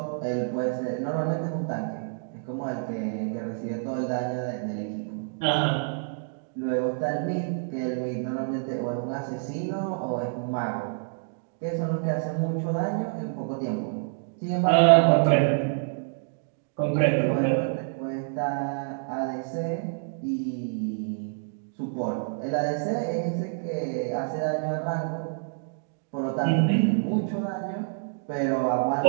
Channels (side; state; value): left; silent; digital silence